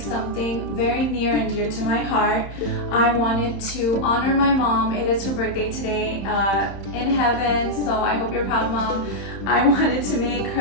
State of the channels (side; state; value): right; late; 31 ms